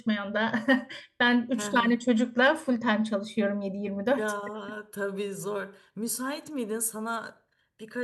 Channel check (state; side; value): identical; both; correlation 1.00